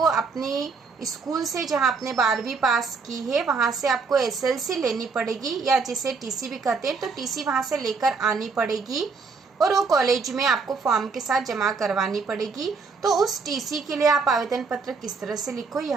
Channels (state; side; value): quieter; left; 4.8 dB